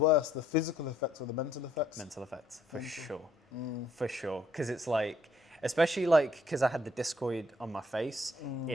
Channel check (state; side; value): normal; both; correlation 0.66